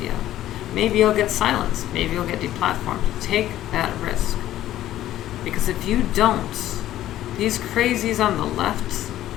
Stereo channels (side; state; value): right; quieter; 13.3 dB